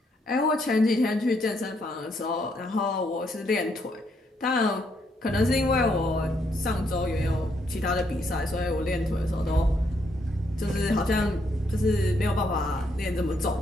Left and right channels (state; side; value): normal; both; correlation 0.74